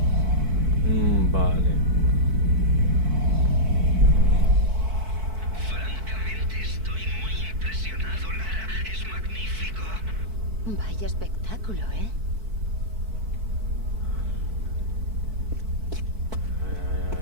Vale. Francamente estoy muy impresionado, Lara. Es magnífico. Vaya espectáculo, ¿eh?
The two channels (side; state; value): left; late; 4.6 ms